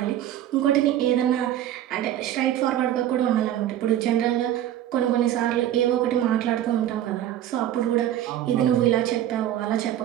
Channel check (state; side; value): quieter; left; 11.9 dB